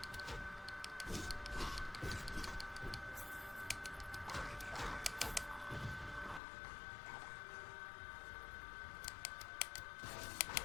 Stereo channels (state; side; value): drops out; right; at 6.4 s